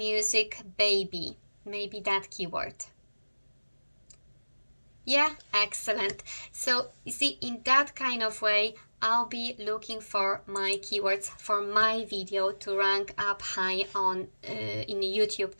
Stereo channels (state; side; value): inverted; both; correlation -1.00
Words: baby, maybe that keyword. Yeah, excellent. So you see, in that kind of way, I'll be looking for my keywords for my video to rank up high on in YouTube